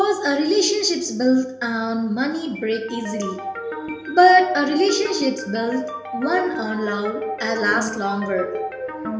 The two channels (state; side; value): identical; both; correlation 1.00